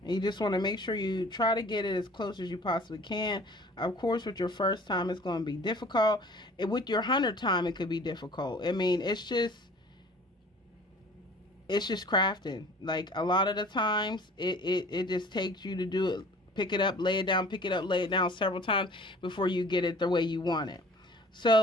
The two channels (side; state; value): both; normal; correlation 0.48